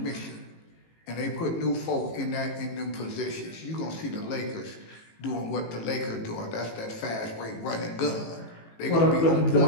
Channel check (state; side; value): late; right; 18 ms